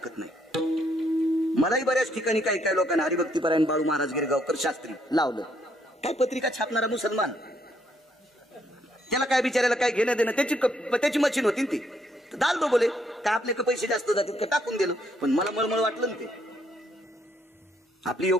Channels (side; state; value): both; normal; correlation 0.72